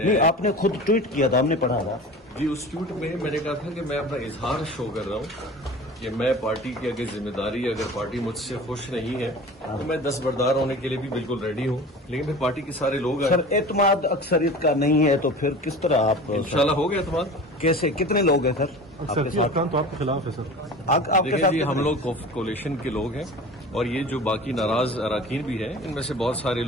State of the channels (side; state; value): both; normal; correlation 0.37